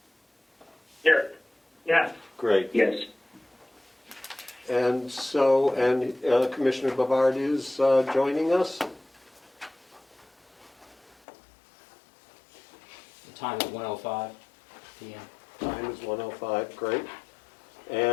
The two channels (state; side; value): drops out; right; at 11.2 s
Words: Here. Yes. Great. Yes. And so, Commissioner Bavard is joining us. The time is 1:05 p.m. Time is 1:05, great.